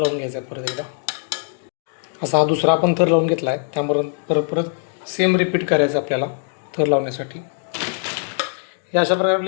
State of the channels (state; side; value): silent; right; 65 dB below the other